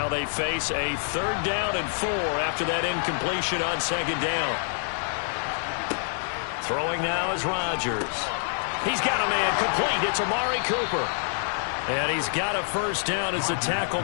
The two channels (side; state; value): right; silent; 61 dB below the other